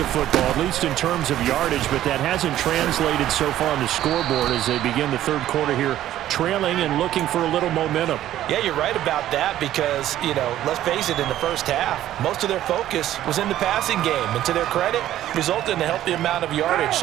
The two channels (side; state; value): left; quieter; 12.8 dB